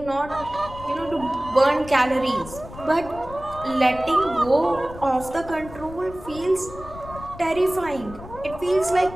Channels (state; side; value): noise; left; rumble, 15 dB below the sound